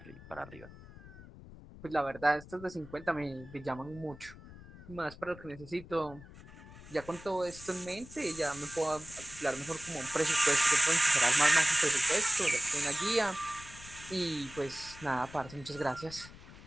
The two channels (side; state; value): left; noise; rumble, 18 dB below the sound